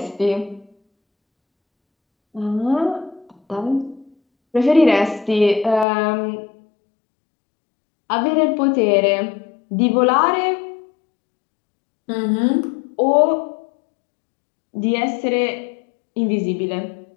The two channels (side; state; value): right; drops out; at 5.9 s